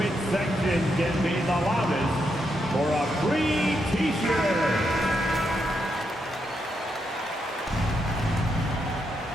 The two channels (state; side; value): normal; both; correlation 0.81